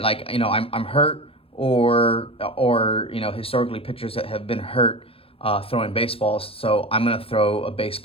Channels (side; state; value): right; late; 0.28 ms